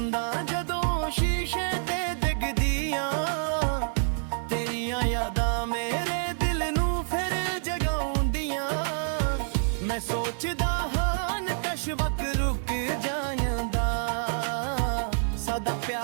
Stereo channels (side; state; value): left; silent; digital silence